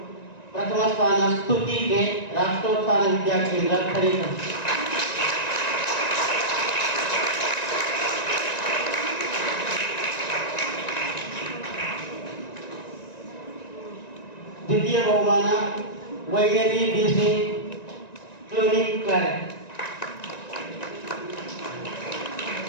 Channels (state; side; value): late; right; 1.9 ms